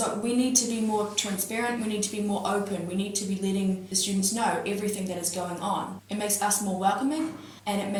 we need to be more transparent, we need to be more open, we need to be letting the students know everything that is going on. It makes us more welcoming, and it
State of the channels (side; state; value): both; identical; correlation 1.00